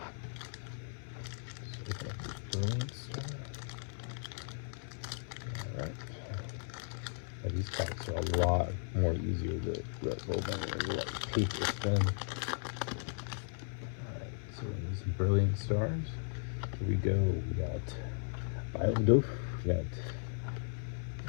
these cards are a lot more easier to let go than like paper thin. Alright, so these brilliant stars. Here we go. We got Biodoof, we got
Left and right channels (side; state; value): right; silent; digital silence